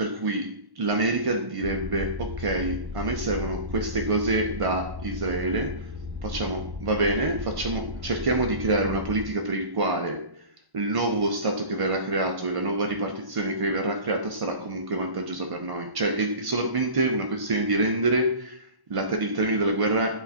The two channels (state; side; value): late; left; 1.1 ms